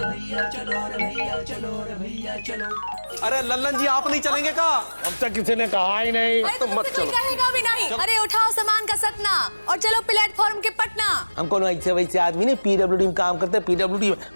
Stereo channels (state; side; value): inverted; both; correlation -1.00